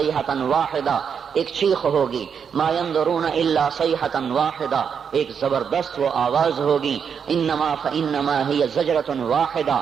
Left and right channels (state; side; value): quieter; left; 6.9 dB